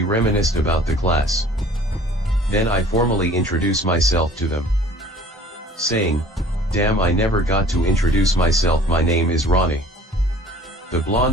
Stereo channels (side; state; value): both; normal; correlation 0.50